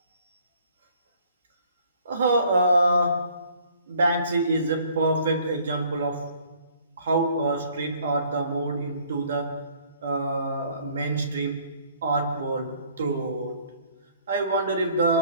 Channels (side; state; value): both; inverted; correlation -0.59